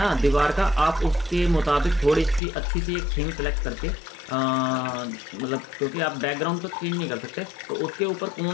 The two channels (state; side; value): drops out; right; at 2.4 s